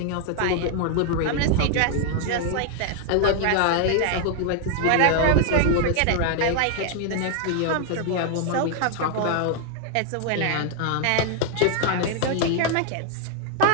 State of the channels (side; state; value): both; different; correlation 0.00